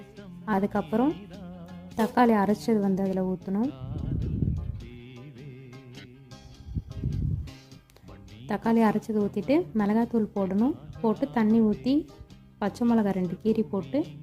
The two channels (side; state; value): both; identical; correlation 1.00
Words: அதுக்கப்புறம் தக்காளி அரைச்சது வந்து அதில் ஊற்றணும். தக்காளி அரைச்சது ஊற்றிட்டு மிளகாத்தூள் போடணும். போட்டு தண்ணி ஊற்றி பச்சை மிளகா 2 கீரி போட்டு